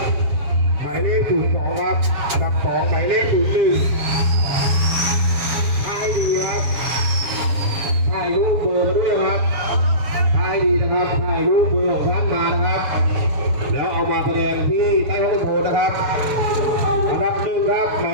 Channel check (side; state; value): left; late; 7.1 ms